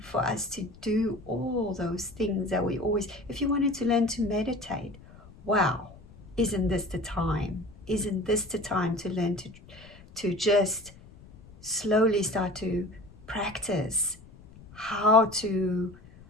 for us to do all those things that we always, if you wanted to learn to meditate, wow, isn't this the time? Isn't this the time to learn to just slowly start to practice how to,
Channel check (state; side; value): noise; left; rumble, 22 dB below the sound